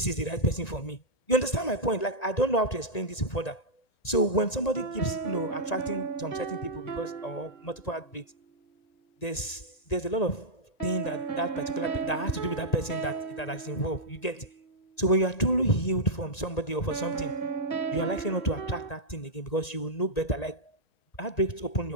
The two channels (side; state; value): right; late; 1.9 ms